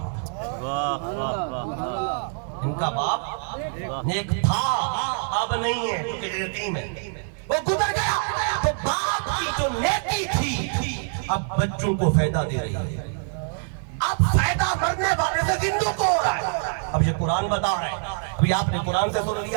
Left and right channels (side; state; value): left; silent; 62 dB below the other